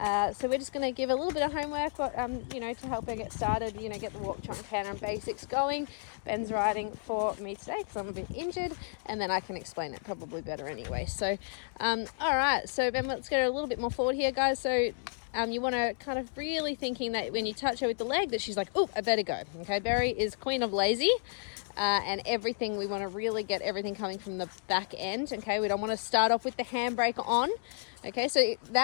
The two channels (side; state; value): right; silent; digital silence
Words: So we're just going to give a little bit of homework, but to help her get started, get the walk, trot, canter and basics going. Ben's riding for me today because I'm a bit injured, and then I can explain it probably better anyway. So, all right. So Ben, let's go a little bit more forward here, guys. So you want to kind of really thinking that when you touch her with the leg, that she's like, oh, I better go. Okay, Berry is queen of lazy. And everything, we want to really get everything coming from the back end. Okay, we don't want to start off with the handbrake on. Okay, so